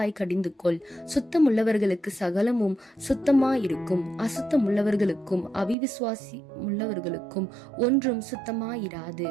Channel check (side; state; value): left; drops out; at 5.8 s